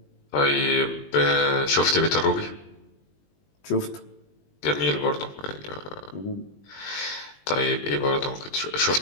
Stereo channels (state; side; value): late; right; 20 ms